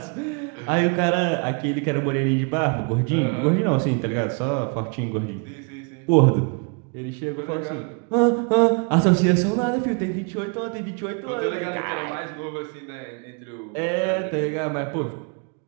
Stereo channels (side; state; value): left; quieter; 37.3 dB